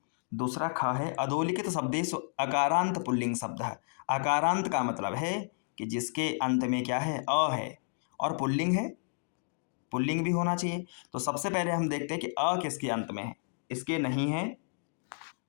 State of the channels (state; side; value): silent; right; digital silence